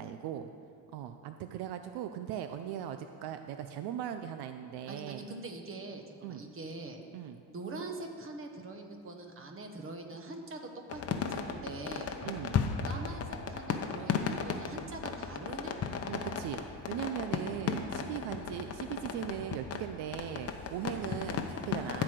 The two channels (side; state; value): both; normal; correlation 0.14